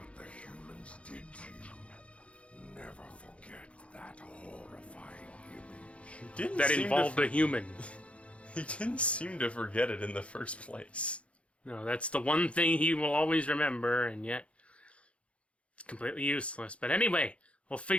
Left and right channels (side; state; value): right; late; 0.061 ms